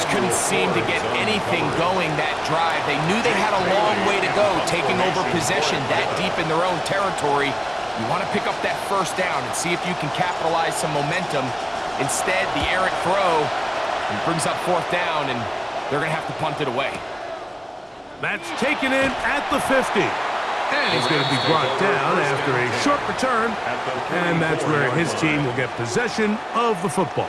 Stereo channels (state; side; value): identical; both; correlation 1.00